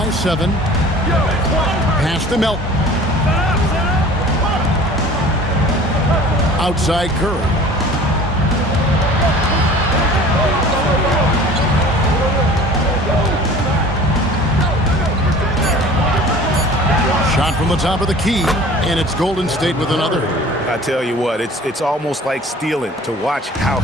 7. Pass to Melton. Outside Curry. Shot from the top of the key, and it's Golden State with another. I tell you what, it's almost like stealing to watch how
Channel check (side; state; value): both; normal; correlation 0.45